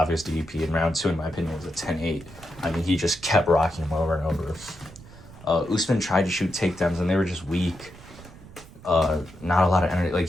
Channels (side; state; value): right; noise; rumble, 19 dB below the sound